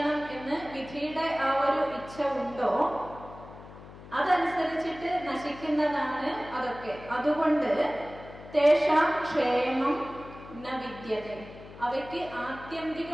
എന്ന് വിധിയുടെ ആ ഒരു ഇച്ഛ ഉണ്ടോ അതനുസരിച്ചിട്ട് നശിക്കുന്നതാണ് അതൊക്കെ. അതുകൊണ്ട് തേഷാം ക്ഷേമം ന വിദ്യതേ, അവയ്ക്ക്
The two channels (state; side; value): noise; left; hum, 17 dB below the sound